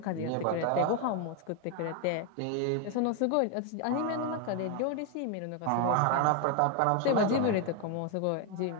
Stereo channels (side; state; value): both; different; correlation 0.01